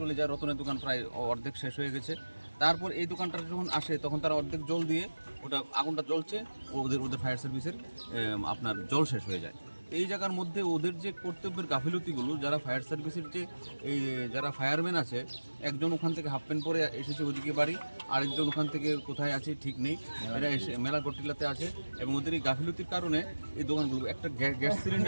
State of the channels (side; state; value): both; inverted; correlation -1.00